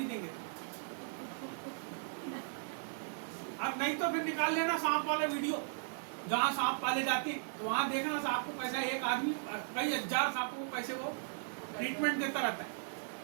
देंगे, अब नहीं तो फिर निकाल लेना सांप वाले वीडियो, जहाँ सांप पाले जाते हैं, तो वहां देखना सांप को कैसा एक आदमी कई हजार सांपों को कैसे वो ट्रीटमेंट देता रहता है।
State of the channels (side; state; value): left; silent; digital silence